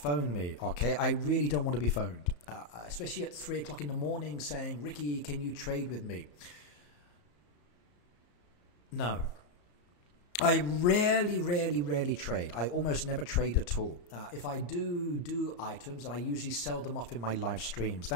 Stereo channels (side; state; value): right; late; 34 ms